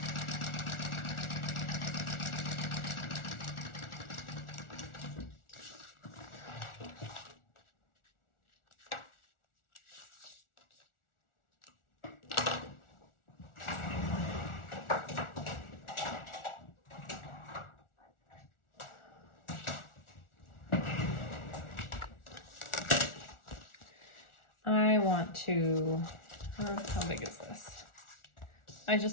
I want to, how big is this? I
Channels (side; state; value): right; late; 1.4 ms